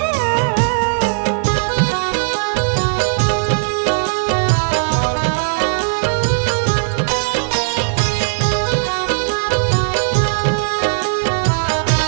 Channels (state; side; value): silent; left; digital silence